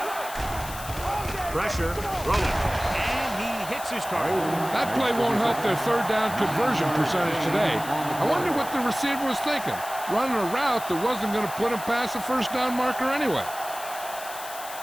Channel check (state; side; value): noise; left; hiss, 12 dB below the sound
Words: Pressure, rolling, and he hits his target. That play won't help their third down conversion percentage today. I wonder what the receiver was thinking, running a route that wasn't going to put him past the first down marker anyway.